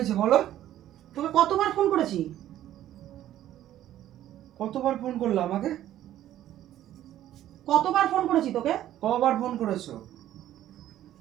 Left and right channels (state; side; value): quieter; left; 12.6 dB